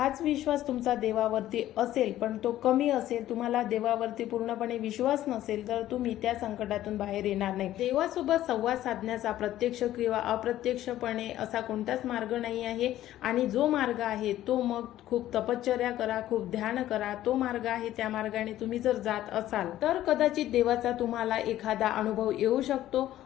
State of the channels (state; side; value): quieter; right; 13.5 dB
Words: विश्वास तुमचा देवावरती असेल पण तो कमी असेल, तुम्हाला देवावरती पूर्णपणे विश्वास नसेल, तर तुम्ही त्या संकटातून बाहेर येणार नाही. देवासोबत संवाद साधण्याचा प्रत्यक्ष किंवा अप्रत्यक्षपणे असा कोणताच मार्ग नाही आहे. आणि जो मार्ग आहे तो मग खूप तपश्चर्या करा, खूप ध्यान करा, तो मार्ग आहे. त्या मार्गाने तुम्ही जर जात असाल तर कदाचित देवाचा तुम्हाला एखादा अनुभव येऊ शकतो.